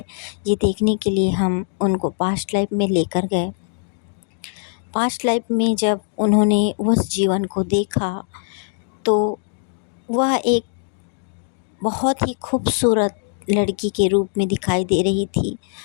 ये देखने के लिए हम उनको पास्ट लाइफ में लेकर गए। पास्ट लाइफ में जब उन्होंने उस जीवन को देखा तो वह एक बहुत ही खूबसूरत लड़की के रूप में दिखाई दे रही थी।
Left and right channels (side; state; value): right; silent; digital silence